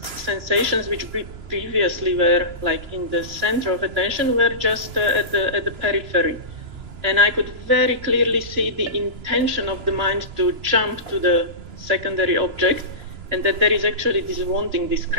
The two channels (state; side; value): late; left; 2.9 ms